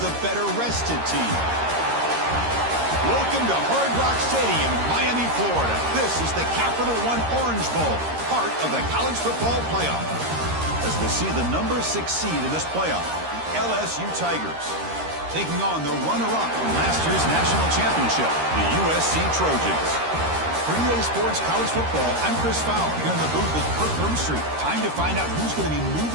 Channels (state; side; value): late; left; 13 ms